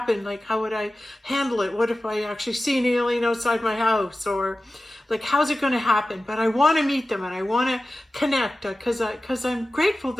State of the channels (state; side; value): normal; both; correlation 0.95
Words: Like, how would I handle it? What if I actually see an alien outside my house? Or like, how's it going to happen? But I want to meet them, and I want to connect because I'm grateful